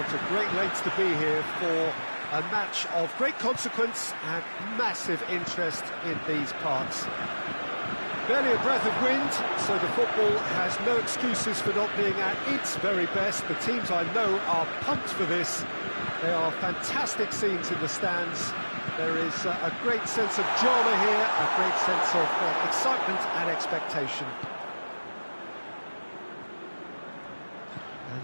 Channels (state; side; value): inverted; both; correlation -1.00